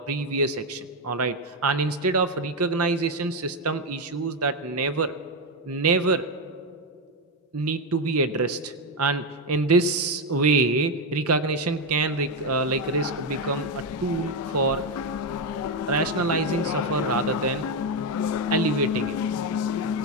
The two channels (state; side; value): normal; both; correlation 0.07